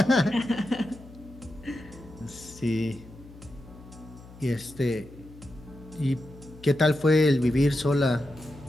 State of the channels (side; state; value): left; noise; hum, 19 dB below the sound